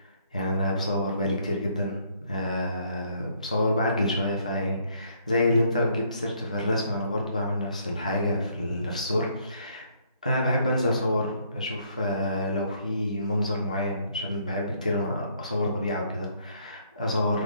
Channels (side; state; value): both; inverted; correlation -0.67